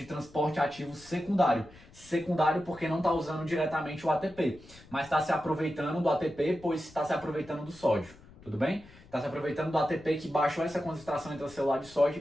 transporte ativo secundário. Secundário porque não está usando diretamente o ATP, mas está se aproveitando do ATP, pois está se aproveitando do sódio. Tudo bem? Está se aproveitando do ATP que baixou essa concentração intracelular de sódio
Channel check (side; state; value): left; noise; rumble, 23 dB below the sound